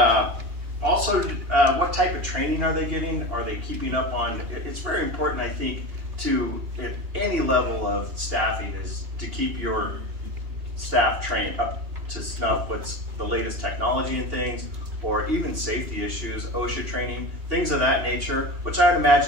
also, what type of training are they getting? Are they keeping up on, it's very important, I think, to, at any level of staffing, is to keep your staff trained up to snuff what's the latest technology and things, or even safety issues, OSHA training, things of that nature, which I would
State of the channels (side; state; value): left; late; 2.8 ms